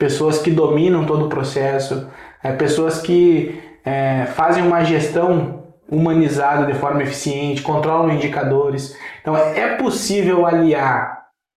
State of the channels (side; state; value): both; identical; correlation 1.00